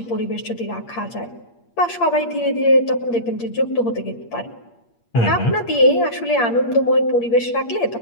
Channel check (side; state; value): right; late; 8.5 ms